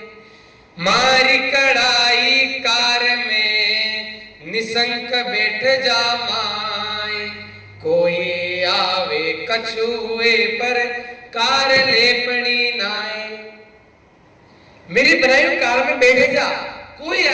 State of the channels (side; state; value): both; identical; correlation 1.00